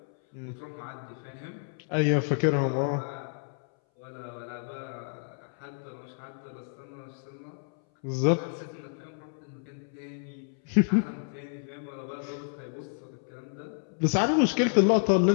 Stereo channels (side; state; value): right; silent; 58 dB below the other